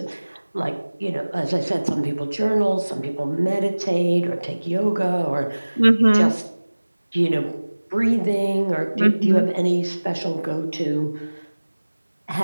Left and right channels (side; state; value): both; inverted; correlation -1.00